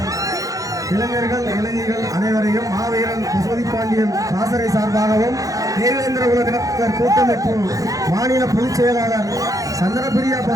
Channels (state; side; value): late; left; 0.17 ms